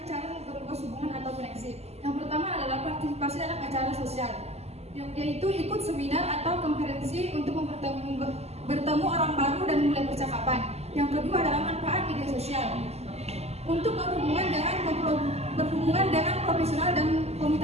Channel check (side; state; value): left; late; 0.30 ms